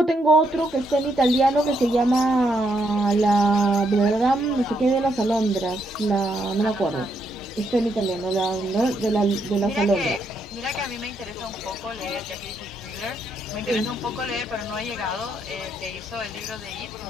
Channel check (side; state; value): both; normal; correlation 0.76